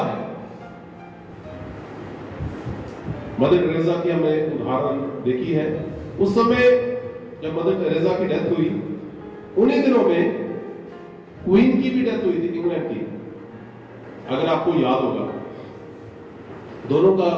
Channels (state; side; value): identical; both; correlation 1.00